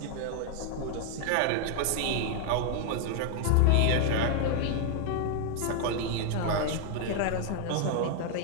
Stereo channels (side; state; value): both; different; correlation 0.00